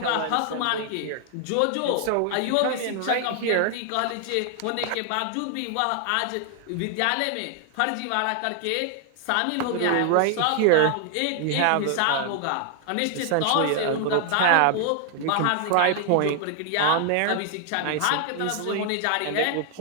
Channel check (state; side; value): different; both; correlation 0.00